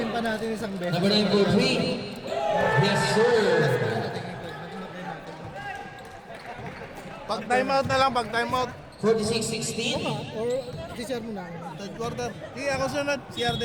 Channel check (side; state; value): both; identical; correlation 1.00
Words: pa natin isang bet. Number 9 for 3. Yes, sir. Pag timeout na lang, pag timeout. 46-16. Or si-share mo na. Third quarter. Sige, ako sunod. CR